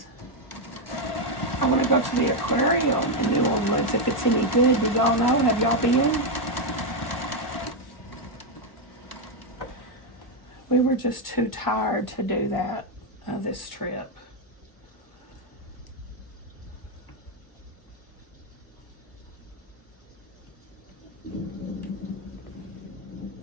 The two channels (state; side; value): late; right; 1.0 ms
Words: I want to go to the aquarium in New Orleans if it's any good. Do y'all know? Have y'all been? We were just too tired to do that this trip.